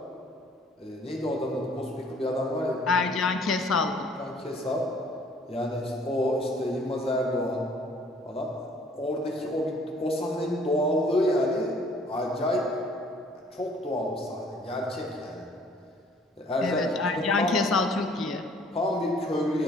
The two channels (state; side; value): normal; both; correlation 0.57